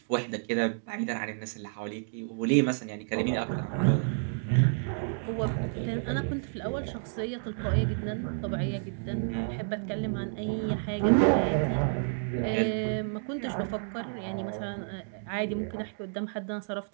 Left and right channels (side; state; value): left; silent; digital silence